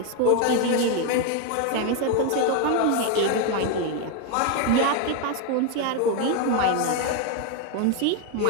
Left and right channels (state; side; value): different; both; correlation 0.01